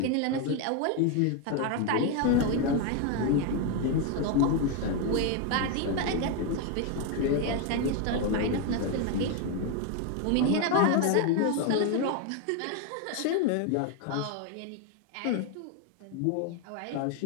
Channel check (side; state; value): both; different; correlation 0.01